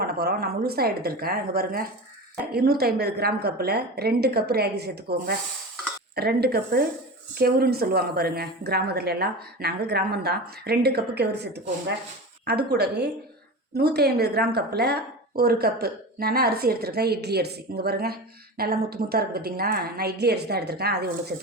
பண்ண போகிறோம். நான் முழுசாக எடுத்திருக்கேன். இங்கே பாருங்கள், 250 கிராம் கப்பில் 2 கப்பு ராகி சேர்த்துக்கோங்க. 2 கப்பு கெவுருன்னு சொல்லுவாங்க பாருங்கள் கிராமத்துல எல்லாம். நாங்கள் கிராமம்தான். 2 கப்பு கெவுரு சேர்த்துக்கோங்க. அது கூடவே 150 கிராம் கப்பில் 1 கப்பு நான் அரிசி எடுத்துருக்கேன், இட்லி அரிசி. இங்கே பாருங்கள், நல்லா முத்து முத்தாக இருக்குது பார்த்தீங்களா. நான் இட்லி அரிசி தான் எடுத்திருக்கேன், அதை உள்ள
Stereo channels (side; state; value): both; normal; correlation 0.28